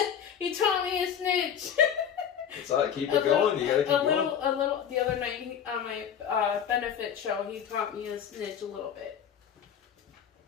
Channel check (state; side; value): quieter; right; 8.5 dB